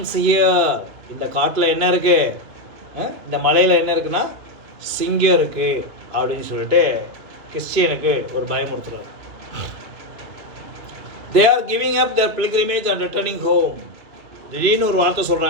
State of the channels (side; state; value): left; late; 2.6 ms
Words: ஹியர். இந்த காட்டில் என்ன இருக்குது, இந்த மலையில் என்ன இருக்குன்னா சிங்கம் இருக்குது அப்படின்னு சொல்லிட்டு கிறிஸ்டியனுக்கு ஒரு பயமுறுத்துறாரு. They are giving up their pilgrimage and returning home. திடீர்னு ஒரு வார்த்தை